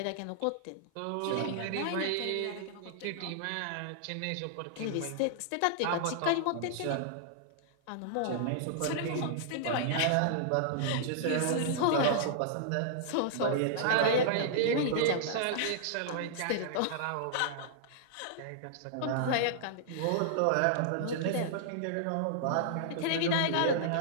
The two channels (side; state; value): both; different; correlation -0.01